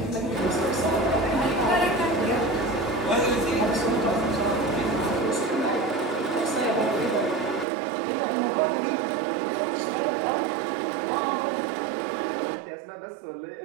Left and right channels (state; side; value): drops out; left; at 7.7 s